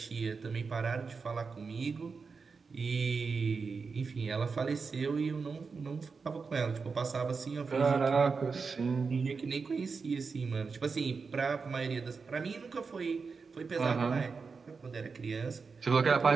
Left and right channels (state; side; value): quieter; left; 4.9 dB